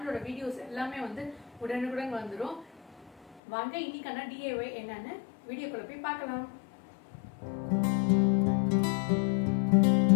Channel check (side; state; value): right; drops out; at 3.4 s